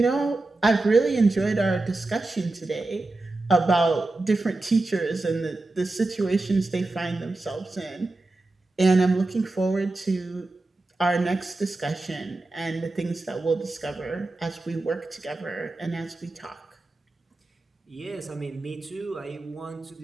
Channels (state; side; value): quieter; left; 3.0 dB